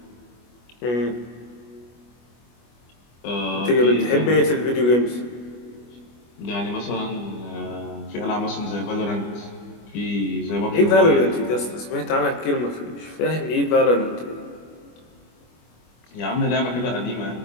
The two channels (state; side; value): late; right; 25 ms